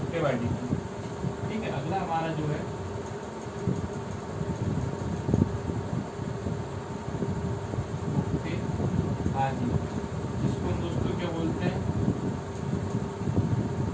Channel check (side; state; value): both; identical; correlation 1.00